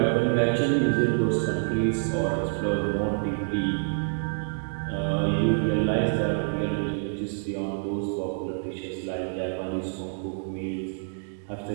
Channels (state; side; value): silent; left; digital silence